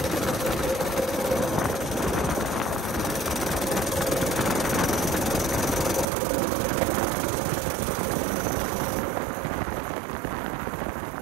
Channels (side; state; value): left; drops out; at 6.1 s